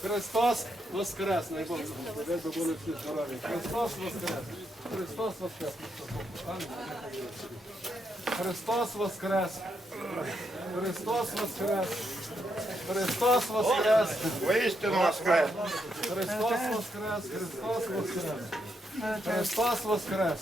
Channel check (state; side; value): normal; both; correlation 0.79